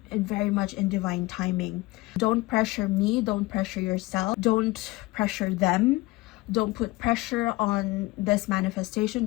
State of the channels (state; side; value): quieter; right; 20.9 dB